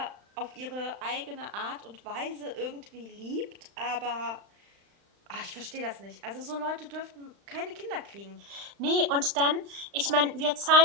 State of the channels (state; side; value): late; left; 35 ms